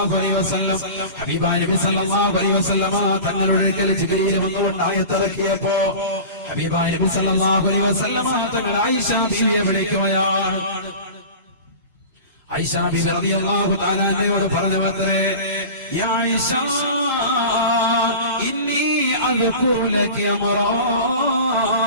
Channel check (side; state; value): both; inverted; correlation -0.35